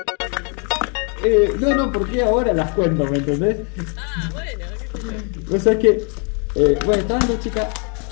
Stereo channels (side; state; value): right; quieter; 37.2 dB